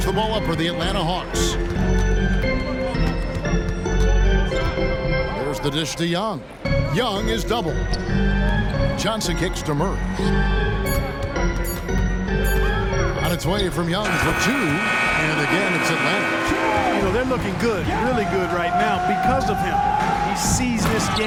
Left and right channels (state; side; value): identical; both; correlation 1.00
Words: the ball up for the Atlanta Hawks. There's the dish to Young. Young is double. Johnson kicks to Murray. On its way from Young for two. And again, it's Atlanta. You know, they're looking good, really good right now because of him. He sees this